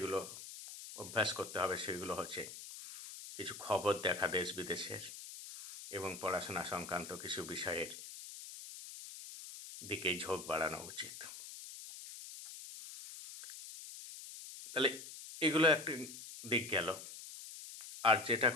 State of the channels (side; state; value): left; noise; hiss, 12 dB below the sound